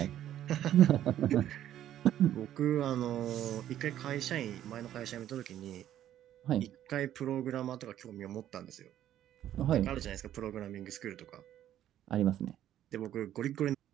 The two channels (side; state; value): left; quieter; 11.7 dB